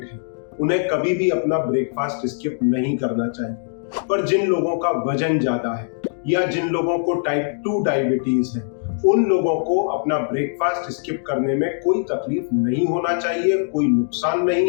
है, उन्हें कभी भी अपना ब्रेकफास्ट स्किप नहीं करना चाहिए। पर जिन लोगों का वजन ज्यादा है या जिन लोगों को टाइप 2 डायबिटीज है, उन लोगों को अपना ब्रेकफास्ट स्किप करने में कोई तकलीफ नहीं होना चाहिए, कोई नुकसान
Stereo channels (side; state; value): right; silent; digital silence